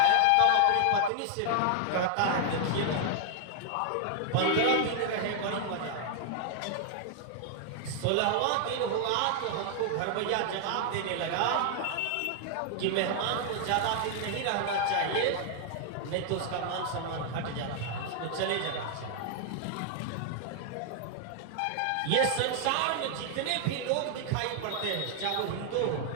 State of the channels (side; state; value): both; different; correlation -0.01